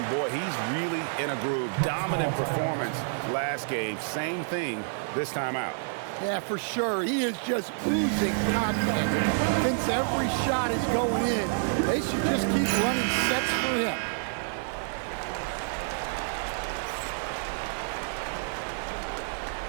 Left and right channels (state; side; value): silent; left; 57 dB below the other